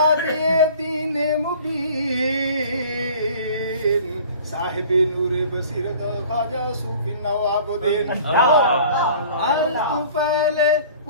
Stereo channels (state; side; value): inverted; both; correlation -0.47